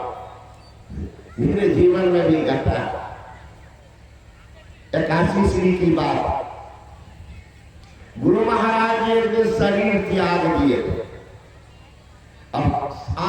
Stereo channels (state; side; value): identical; both; correlation 1.00